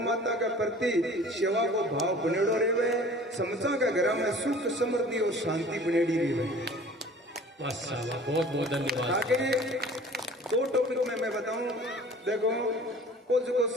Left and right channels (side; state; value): both; normal; correlation 0.46